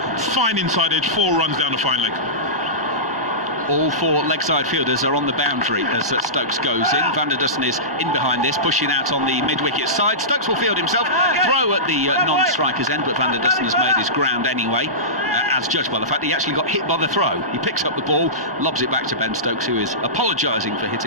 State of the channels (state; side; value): normal; both; correlation -0.19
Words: fine inside edge, 4 runs down the fine leg. All 4 leg side fielders are on the boundary as Stokes goes in. Van der Dussen is in behind this, pushing out on the mid-wicket side. Stokes will field himself, throw at the non-striker's end, but Van der Dussen has made his ground anyway, as judged by the fact that he actually got hit by the throw. He picks up the ball, lobs it back to Ben Stokes, who is apologising for